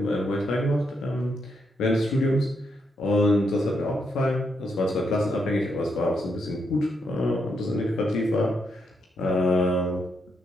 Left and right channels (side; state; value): both; normal; correlation 0.80